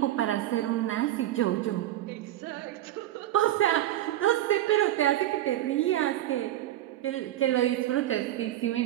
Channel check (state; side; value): quieter; left; 13.6 dB